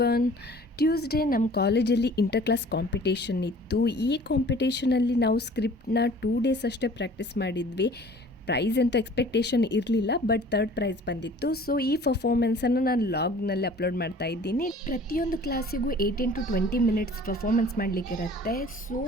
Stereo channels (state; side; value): normal; both; correlation 0.49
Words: Tuesday ನಮ್ಮ ಕಾಲೇಜಲ್ಲಿ inter class competition ಇತ್ತು. ಈ ಕಾಂಪಿಟೇಷನಲ್ಲಿ ನಾವು ಸ್ಕ್ರಿಪ್ಟ್ನ 2 days ಅಷ್ಟೇ ಪ್ರಾಕ್ಟೀಸ್ ಮಾಡಿದ್ವಿ. ಪ್ರೈಸ್ ಅಂತೂ ಎಕ್ಸ್ಪೆಕ್ಟೇಷನ್ ಇರಲಿಲ್ಲ, ಬಟ್ 3rd ಪ್ರೈಸ್ ಬಂದಿತ್ತು. ಸೊ ಈ ಪರ್ಫಾರ್ಮೆನ್ಸನ್ನು ನಾನು ಲಾಗ್ನಲ್ಲಿ ಅಪ್ಲೋಡ್ ಮಾಡ್ತಾ ಇದ್ದೀನಿ. ಪ್ರತಿಯೊಂದು ಕ್ಲಾಸಿಗೂ 18 to 20 ಮಿನಿಟ್ಸ್ ಪರ್ಫಾರ್ಮೆನ್ಸ್ ಮಾಡಲಿಕ್ಕಿರುತ್ತೆ. ಸೊ